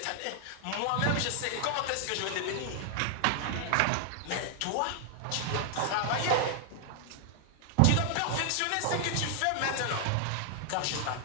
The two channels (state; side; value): different; both; correlation 0.00